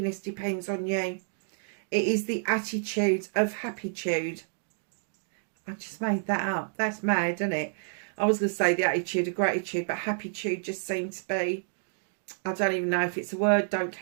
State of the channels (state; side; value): silent; left; digital silence